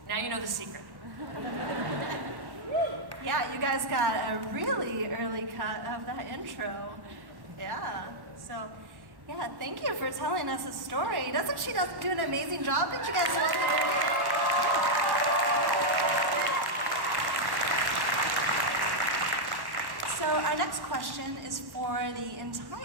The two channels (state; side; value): late; left; 1.1 ms